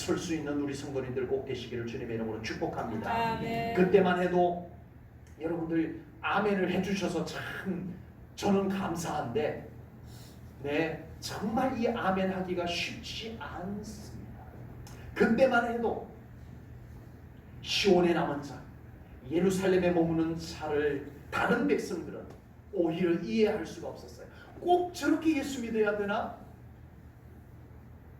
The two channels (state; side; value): identical; both; correlation 1.00